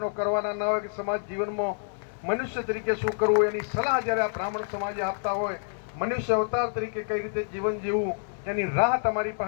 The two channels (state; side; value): silent; right; 60 dB below the other